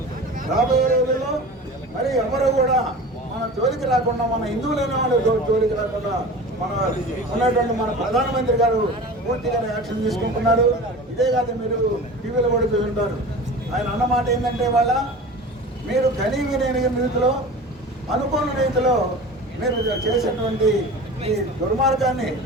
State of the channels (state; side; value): normal; both; correlation 0.36